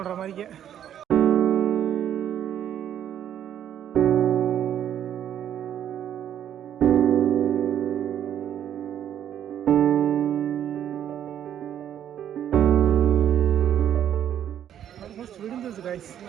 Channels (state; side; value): quieter; left; 10.1 dB